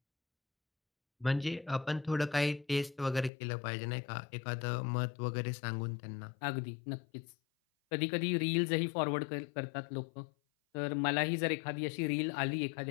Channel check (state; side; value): drops out; right; at 3.3 s